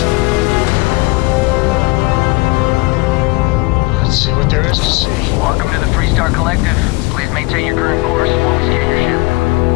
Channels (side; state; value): right; quieter; 24.9 dB